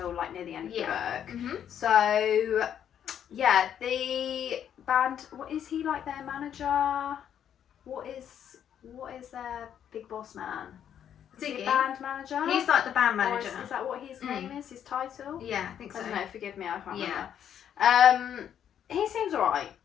near the end of the book. So the band. What is he their manager? What is their big boss man? Ziggy. Band manager? He's the band manager. Is that what his name is? His title? Yeah, I think so. I don't know, forgive me, I can't remember. He seems alright.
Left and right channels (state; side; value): quieter; right; 9.3 dB